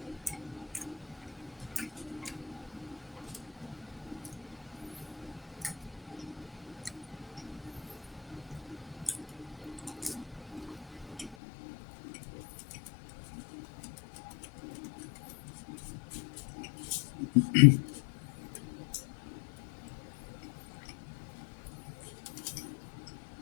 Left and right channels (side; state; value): right; drops out; at 11.4 s